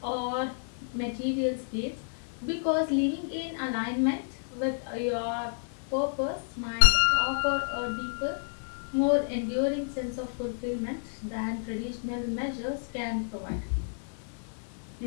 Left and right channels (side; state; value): right; silent; 58 dB below the other